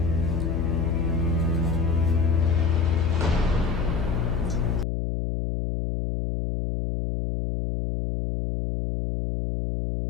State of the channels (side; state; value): left; noise; hum, 1 dB below the sound